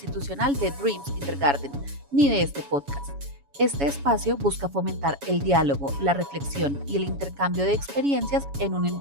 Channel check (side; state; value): left; late; 7.1 ms